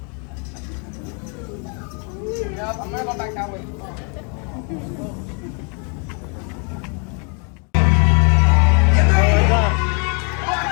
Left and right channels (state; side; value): quieter; right; 37.0 dB